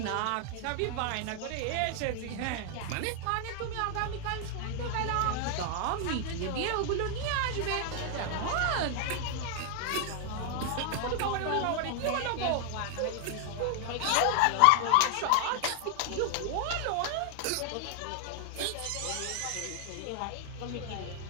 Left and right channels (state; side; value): different; both; correlation 0.00